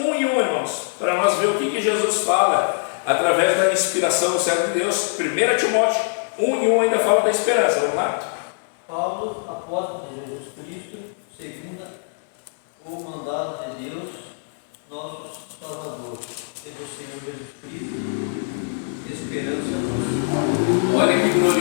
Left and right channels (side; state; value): right; silent; digital silence